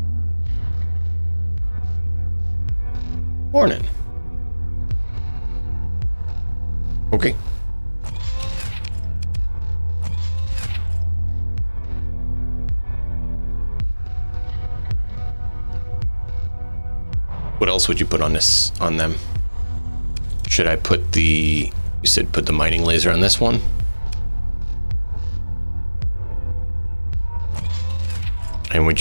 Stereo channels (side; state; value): both; inverted; correlation -1.00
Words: Morning. Okay. What else would you put on them? Should I put you said put the mining laser on this one? And